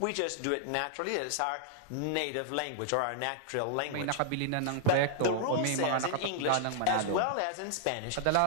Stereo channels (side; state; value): both; different; correlation -0.01